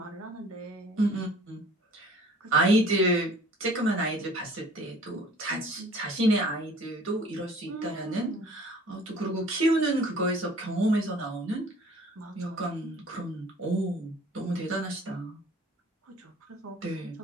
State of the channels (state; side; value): normal; both; correlation 0.50